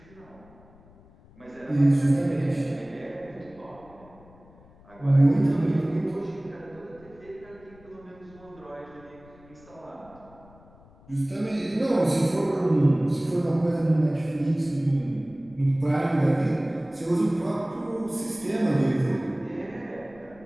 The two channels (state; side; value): noise; left; rumble, 25 dB below the sound